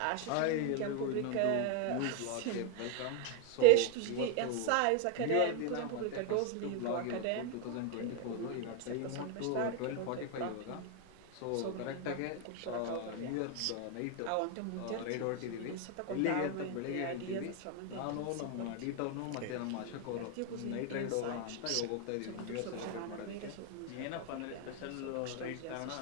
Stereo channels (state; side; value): different; both; correlation 0.01